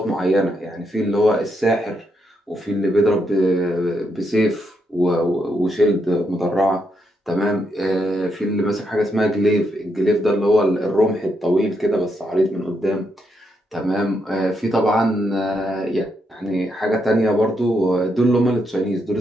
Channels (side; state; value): both; normal; correlation 0.79